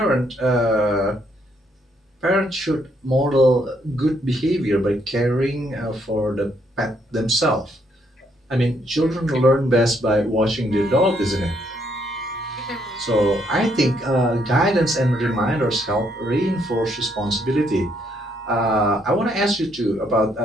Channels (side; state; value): both; normal; correlation 0.72